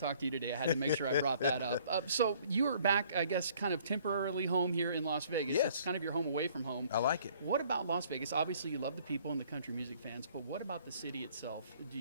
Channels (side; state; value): both; inverted; correlation -0.58